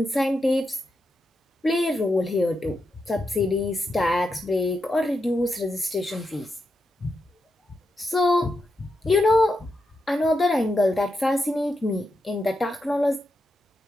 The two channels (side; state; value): both; normal; correlation 0.86